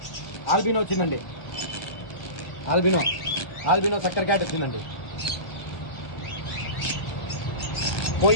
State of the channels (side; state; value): right; late; 1.4 ms